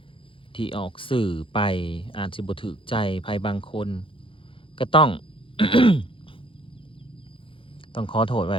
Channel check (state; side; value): late; right; 0.25 ms